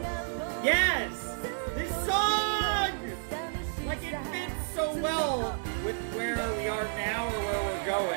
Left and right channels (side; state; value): left; silent; digital silence